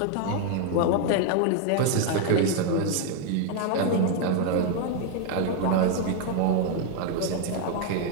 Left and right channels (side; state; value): both; different; correlation 0.00